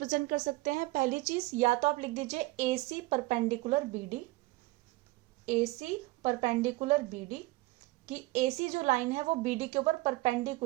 कर सकते हैं. पहली चीज, या तो आप लिख दीजिए ए C perpendicular B D, A C perpendicular B D, कि ए सी जो लाइन है वो बी डी के ऊपर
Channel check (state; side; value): quieter; left; 20.8 dB